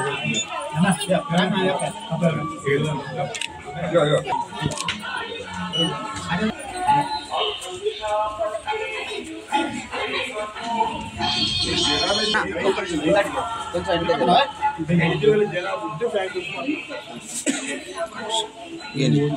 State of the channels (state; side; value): identical; both; correlation 1.00